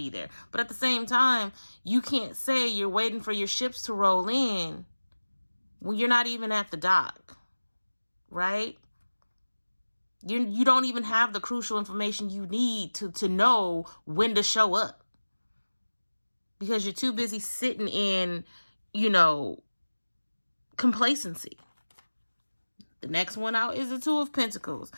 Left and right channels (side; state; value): both; inverted; correlation -1.00